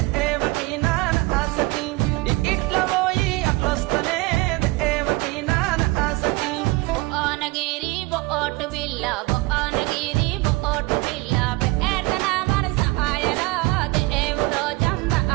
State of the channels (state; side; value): quieter; left; 23.1 dB